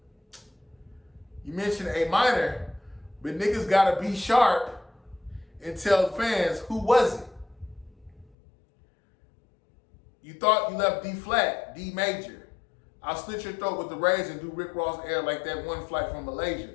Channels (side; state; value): right; drops out; at 8.3 s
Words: you mentioned A minor, but niggas gotta be sharp and tell the fans who was it. You thought you left D flat, D major. I'll slit your throat with the razor and do Rick Ross air like that one flight from